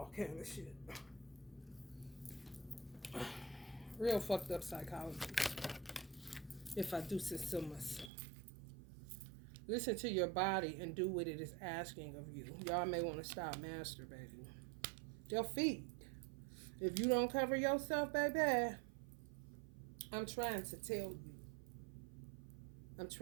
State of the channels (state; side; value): drops out; left; at 8.1 s